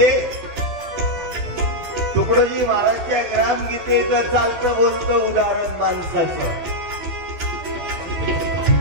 तुकडोजी महाराजच्या ग्रामगीतेचं चालतं बोलतं उदाहरण माणसाचं.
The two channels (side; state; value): left; late; 12 ms